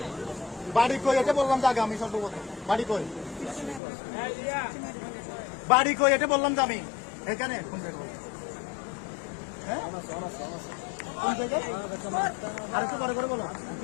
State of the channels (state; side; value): drops out; right; at 3.8 s